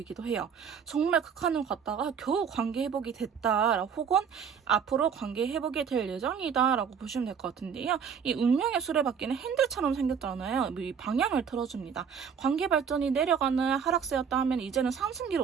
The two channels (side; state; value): left; quieter; 7.0 dB